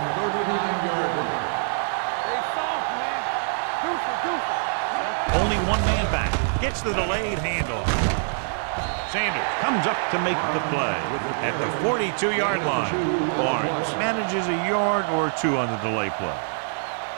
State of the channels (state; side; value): silent; left; digital silence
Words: 39-yard line. Hey, soft, man. Deuce. Only one man back. Gets the delayed handoff. Sanders comes up to make the play at the 42-yard line. Barnes manages a yard or two on the delay play.